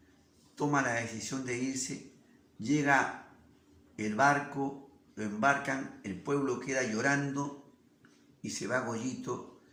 Toma la decisión de irse, llega el barco, lo embarcan, el pueblo queda llorando y se va Goyito,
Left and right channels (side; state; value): both; identical; correlation 1.00